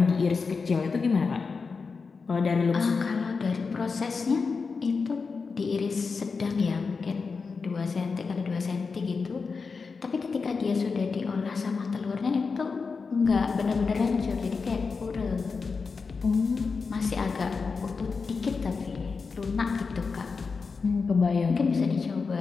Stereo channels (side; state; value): right; quieter; 4.8 dB